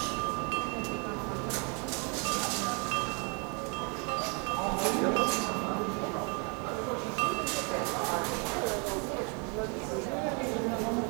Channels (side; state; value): left; quieter; 35.1 dB